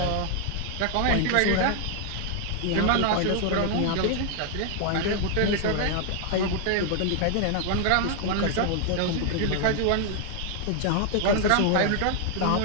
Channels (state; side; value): different; both; correlation 0.00